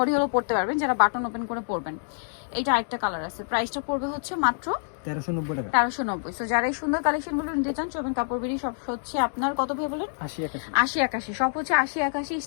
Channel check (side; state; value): right; silent; digital silence